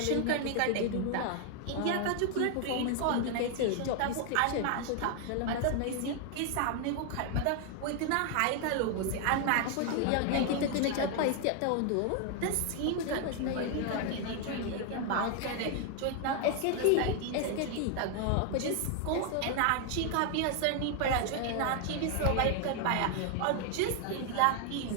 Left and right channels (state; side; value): different; both; correlation 0.00